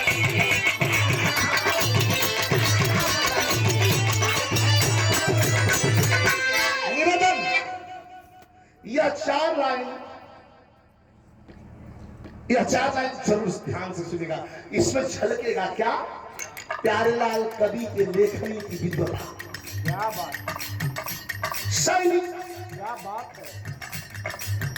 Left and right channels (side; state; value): both; identical; correlation 1.00